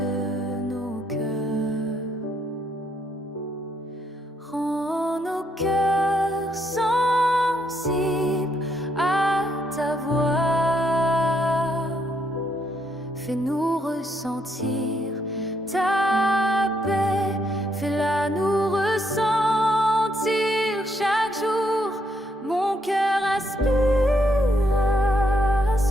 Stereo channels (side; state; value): both; normal; correlation 0.74